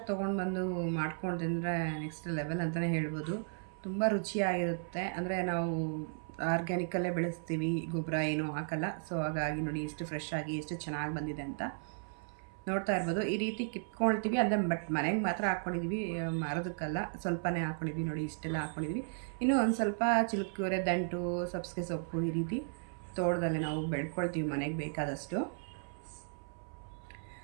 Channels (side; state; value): left; silent; 54 dB below the other